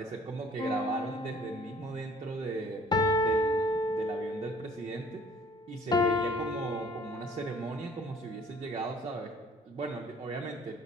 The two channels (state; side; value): normal; both; correlation 0.55